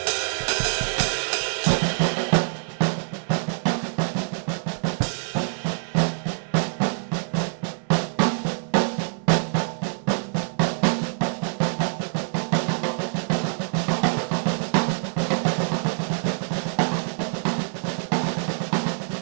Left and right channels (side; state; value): left; silent; 62 dB below the other